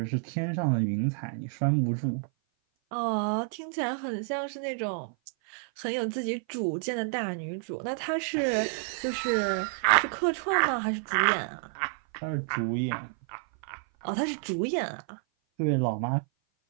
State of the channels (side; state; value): left; silent; 56 dB below the other